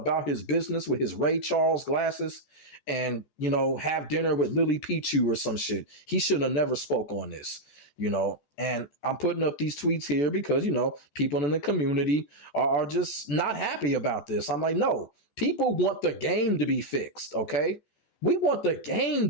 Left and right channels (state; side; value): late; right; 14 ms